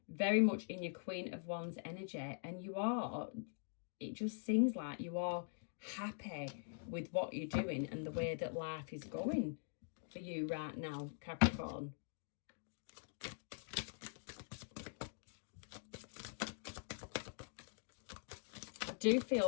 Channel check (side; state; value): right; silent; digital silence